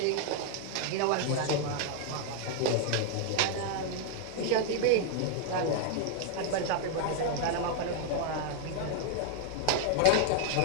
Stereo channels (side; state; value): both; different; correlation 0.00